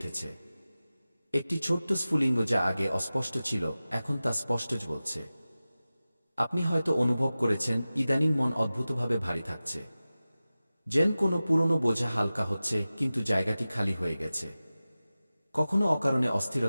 একটি ছোট্ট স্ফুলিঙ্গ যা আগে অস্পষ্ট ছিল, এখন তা স্পষ্ট বলছে। আপনি হয়তো অনুভব করেছেন, ইদানিং মন অদ্ভুতভাবে ভারী থাকছে। যেন কোনো পুরনো বোঝা হালকা হচ্ছে, কিন্তু জায়গাটি খালি হয়ে গেছে। কখনো অকারণে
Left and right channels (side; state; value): both; inverted; correlation -0.96